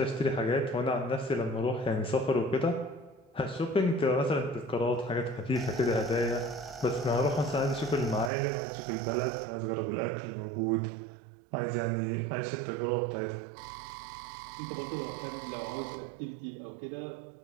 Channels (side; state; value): left; drops out; at 8.3 s